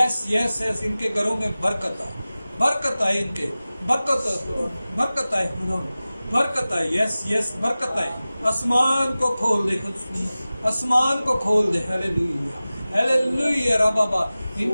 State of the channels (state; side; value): inverted; both; correlation -0.97